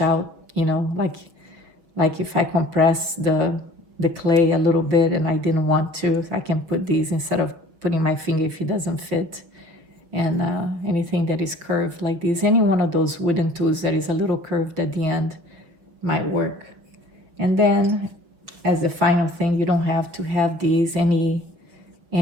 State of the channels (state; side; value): late; left; 6.2 ms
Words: out, like if I compress the clay a little bit and I didn't want to, I can put these instead of putting my finger if it doesn't fit. And anything that is curved like this, any one of those wooden tools that is a little curved at the end might work. And then as the final thing, you don't have to have these. Any